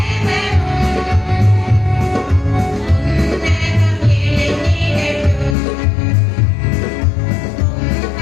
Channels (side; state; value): right; drops out; at 5.6 s